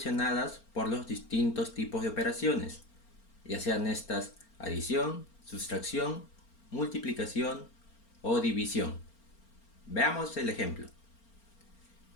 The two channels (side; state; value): right; late; 4.4 ms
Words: por los distintos tipos de operaciones, ya sean estas adición, sustracción, multiplicación o división. Veamos el ejemplo.